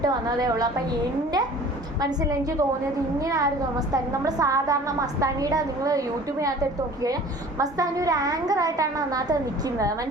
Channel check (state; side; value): normal; both; correlation 0.46